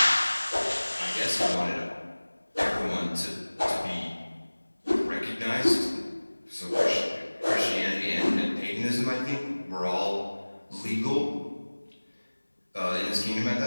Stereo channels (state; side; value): inverted; both; correlation -1.00